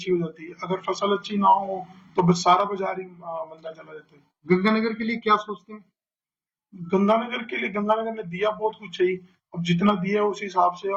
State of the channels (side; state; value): both; identical; correlation 1.00